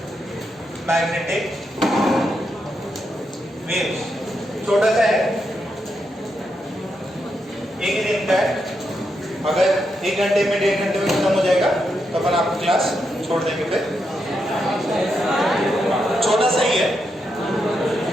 मैग्नेटिक वेव्स, छोटा सा है, एक ही दिन का है। अगर 1 घंटे में 1.5 घंटे में खत्म हो जाएगा तो अपन आपको क्लास छोड़ देंगे। फिर छोटा सा ही है।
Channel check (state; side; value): normal; both; correlation 0.83